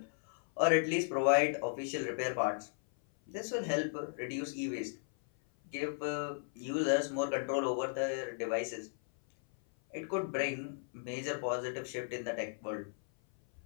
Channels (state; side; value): silent; right; 54 dB below the other